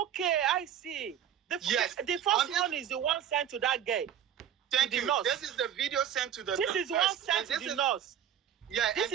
I see. The first one is the one sent to that girl. Thank you. Nurse. This is the video sent to the This is one sent to the nurse. Yeah, this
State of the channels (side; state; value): left; quieter; 9.7 dB